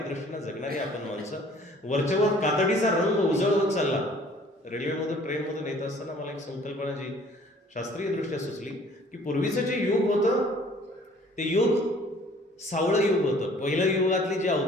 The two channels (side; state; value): both; normal; correlation 0.54